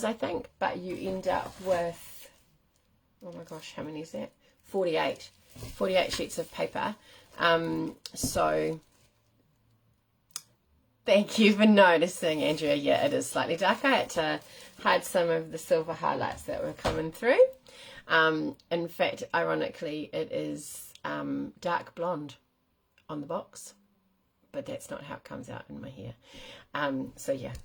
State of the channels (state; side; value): identical; both; correlation 1.00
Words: I think, but you end up with, oh my gosh, how many is that? 48 sheets of paper. So thank you for noticing, Andrea. Yeah, it is slightly dark. I had to hide some of the silver highlights that were coming through. In fact, ironically, it is dark blonde on the box, but that's not how it comes out in my hair. So yeah,